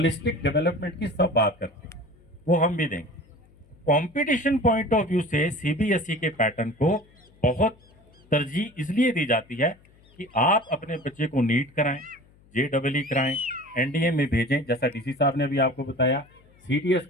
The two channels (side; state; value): left; noise; hum, 29 dB below the sound